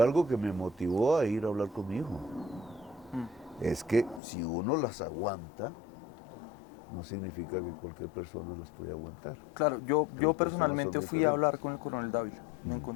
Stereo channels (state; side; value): drops out; right; at 4.2 s